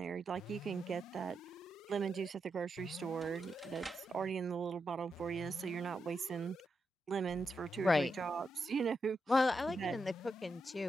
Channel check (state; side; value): normal; both; correlation 0.85